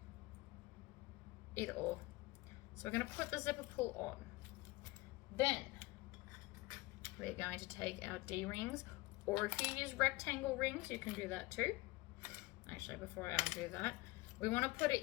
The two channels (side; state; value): right; quieter; 21.1 dB